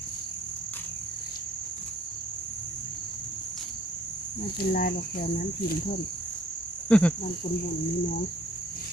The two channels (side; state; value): both; normal; correlation 0.60